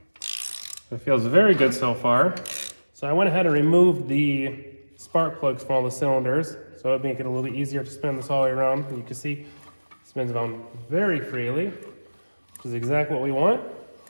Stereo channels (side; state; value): both; inverted; correlation -1.00